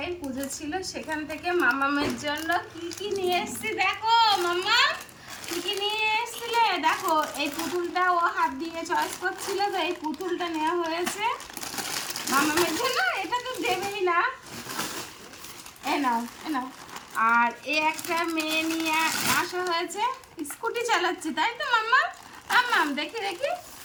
পুজো ছিল, সেখান থেকে মামামের জন্য কি কি নিয়ে এসেছি দেখো। মাম্মা কি কি নিয়ে এসেছিলে দেখো। এই পুতুলটা ও হাত দিয়ে চয়েস করছিল, তো এই পুতুলটা নেওয়া হয়েছে মামামের জন্য। এটা তো দেবেই না, এ নাও এ নাও। আর এই একটা মেয়ে নিয়ে আসা হয়েছে, স্কুটি চালাচ্ছে তাই তো মাম্মা? মাম্মাম দেখি দেখি,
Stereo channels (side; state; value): both; identical; correlation 1.00